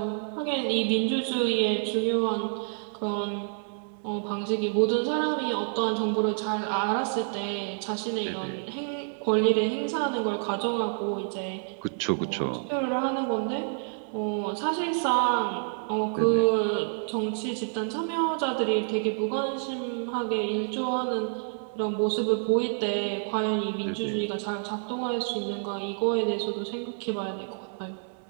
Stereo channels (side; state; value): left; silent; 59 dB below the other